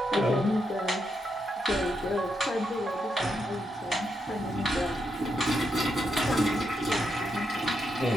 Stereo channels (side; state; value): both; normal; correlation 0.82